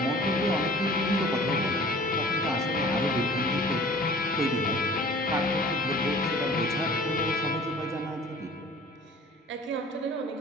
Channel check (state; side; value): normal; both; correlation 0.47